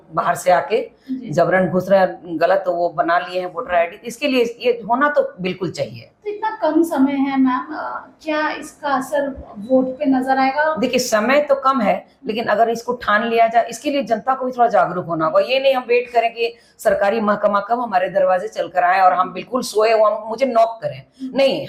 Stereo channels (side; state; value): both; identical; correlation 1.00